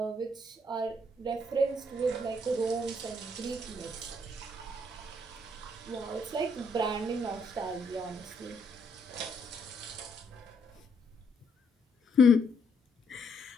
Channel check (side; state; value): both; normal; correlation 0.72